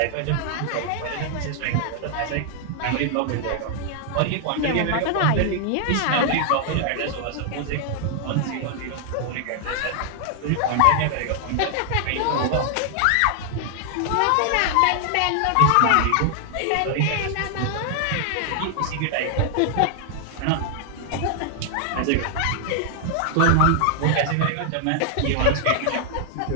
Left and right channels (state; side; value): different; both; correlation 0.00